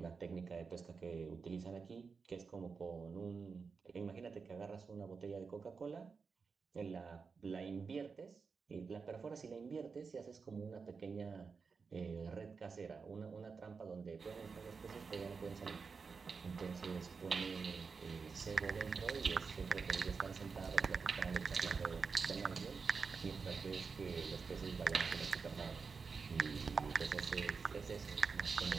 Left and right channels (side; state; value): left; quieter; 5.1 dB